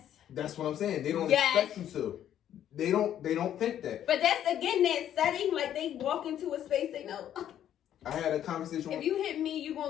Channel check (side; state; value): right; quieter; 10.7 dB